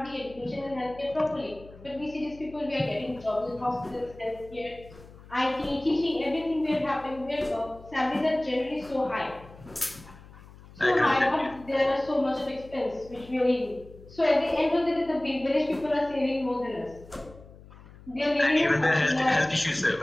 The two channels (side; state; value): left; noise; hum, 20 dB below the sound